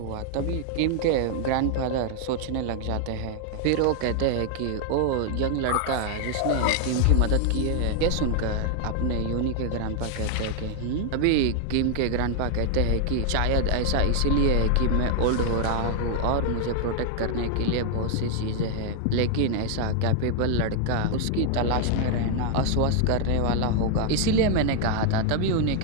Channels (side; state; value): both; different; correlation 0.00